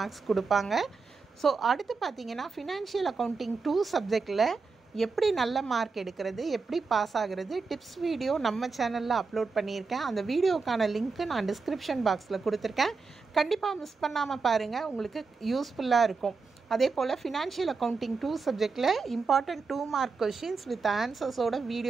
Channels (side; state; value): left; quieter; 4.5 dB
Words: கொடுப்பாங்க. ஸோ அடுத்து பார்த்தீங்கன்னா ஃபினான்ஷியல் அக்கௌண்டிங் 2 சப்ஜெக்டில் எப்படி நல்ல மார்க் எடுக்கிறது, எப்படி பாஸ் ஆகிறது, டிப்ஸ் வீடியோ நம்ம சேனலில் அப்லோட் பண்ணியிருக்கேன். அந்த வீடியோக்கான லிங்க்கு நான் டிஸ்கிரிப்ஷன் பாக்ஸில் கொடுத்துருக்கேன். கண்டிப்பாக மிஸ் பண்ணாமல் பாருங்கள், உங்களுக்கு யூஸ்ஃபுல்லாக இருக்கும். அதே போல் ஃபினான்ஷியல் அக்கௌண்டிங் 2 சப்ஜெக்டில் இம்பார்ட்டன்ட் 2 மார்க் கொஷின்ஸ் வித் ஆன்சர்ஸோட